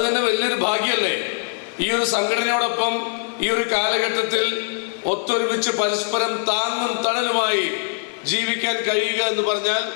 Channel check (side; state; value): right; silent; 64 dB below the other